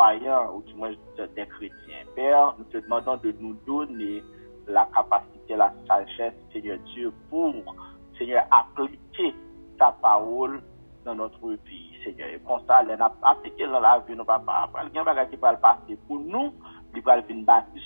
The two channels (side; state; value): both; inverted; correlation -1.00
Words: ou du moins des chrétiens. Père, nous te demandons de nous donner la capacité, la sagesse, Seigneur Dieu, pour, Seigneur, appliquer ta parole dans notre vie, Seigneur. Et pour ça, les appliquer dans la vie, nous papa, il y a un bagage qui va le passer pour nous, il va venir bâtir